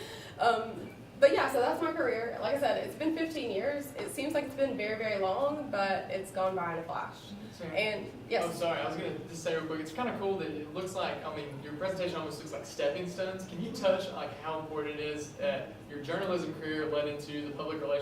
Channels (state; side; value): identical; both; correlation 1.00